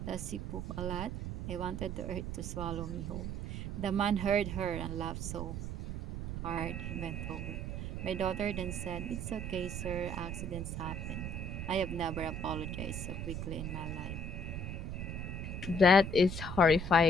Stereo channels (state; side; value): noise; right; rumble, 4 dB below the sound